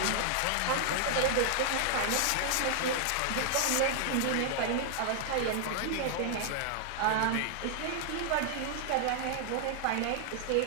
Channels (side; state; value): both; different; correlation 0.00